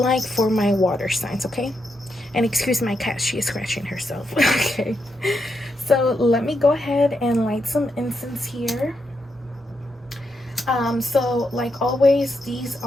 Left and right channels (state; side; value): normal; both; correlation 0.82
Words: for my water signs. Okay, and excuse my cat, she is scratching herself. Okay, so let me go ahead and light some incense here. So like always, these